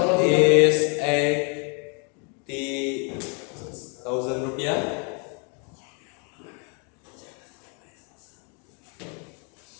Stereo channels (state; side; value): quieter; right; 37.3 dB